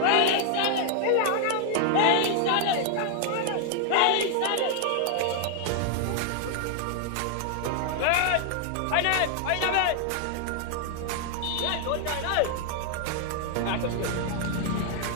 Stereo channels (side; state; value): both; different; correlation 0.00